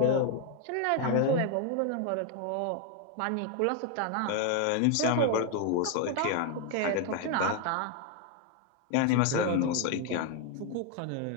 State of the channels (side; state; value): both; different; correlation 0.01